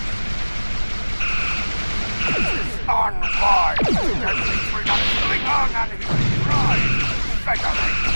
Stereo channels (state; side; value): inverted; both; correlation -1.00